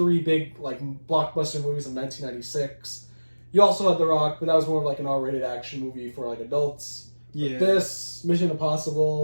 big, blockbuster movies of 1996. You also had The Rock, but that was more of an R-rated action movie for adults. Yeah. But this, Mission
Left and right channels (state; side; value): inverted; both; correlation -1.00